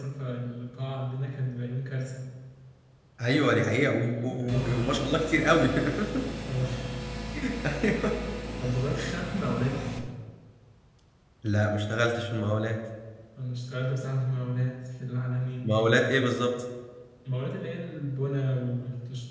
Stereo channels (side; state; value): both; identical; correlation 1.00